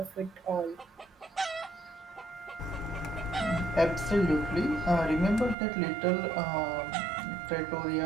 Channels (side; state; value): left; drops out; at 5.6 s